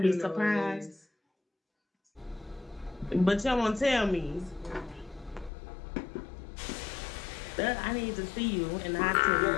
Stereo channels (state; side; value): drops out; right; at 5.5 s